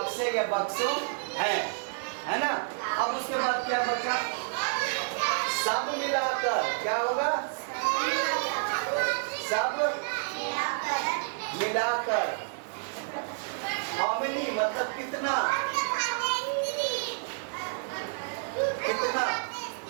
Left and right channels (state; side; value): silent; left; digital silence